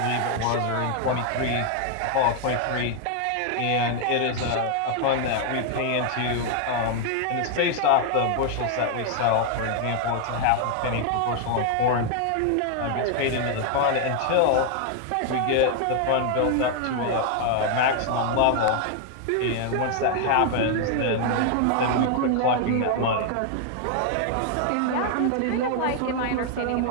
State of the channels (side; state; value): both; different; correlation 0.00